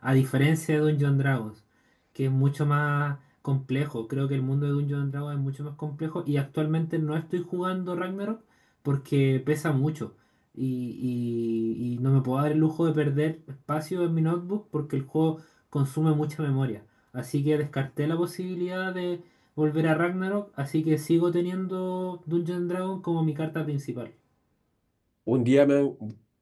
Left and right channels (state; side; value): identical; both; correlation 1.00